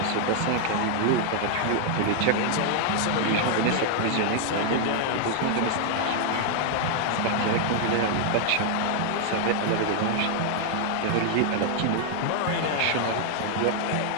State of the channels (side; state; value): both; different; correlation 0.00